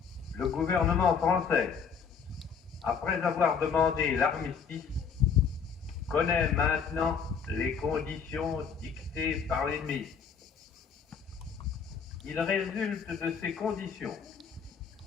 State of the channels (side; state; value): right; quieter; 6.4 dB